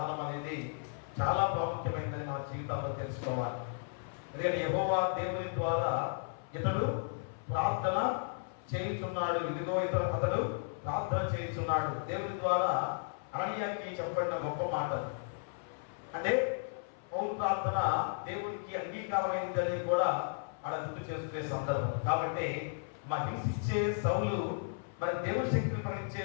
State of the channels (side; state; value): right; silent; 55 dB below the other